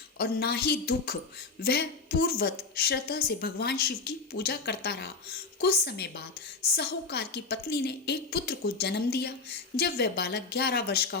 और ना ही दुख। वह पूर्ववत श्रद्धा से भगवान शिव की पूजा करता रहा। कुछ समय बाद साहूकार की पत्नी ने एक पुत्र को जन्म दिया। जब वह बालक 11 वर्ष का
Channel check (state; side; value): quieter; right; 4.2 dB